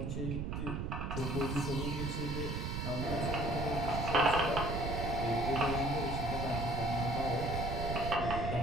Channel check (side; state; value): right; noise; rumble, 3 dB below the sound